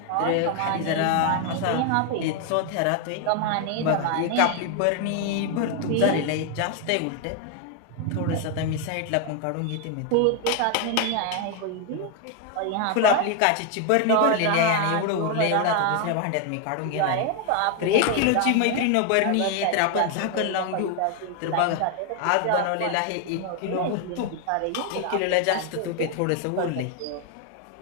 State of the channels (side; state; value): both; different; correlation 0.01